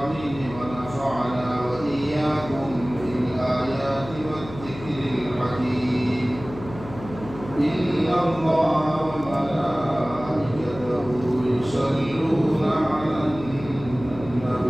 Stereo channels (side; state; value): left; noise; hum, 14 dB below the sound